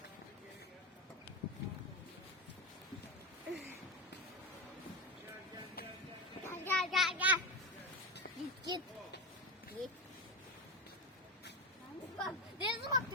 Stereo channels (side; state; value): both; normal; correlation 0.16